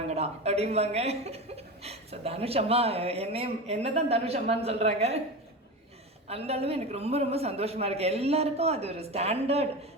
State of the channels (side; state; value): both; normal; correlation 0.25